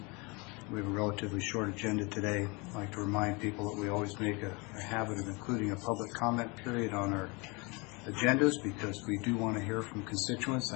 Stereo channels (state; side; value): quieter; right; 28.4 dB